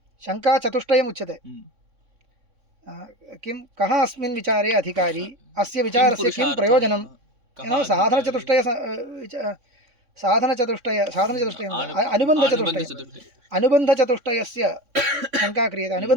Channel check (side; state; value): left; late; 3.6 ms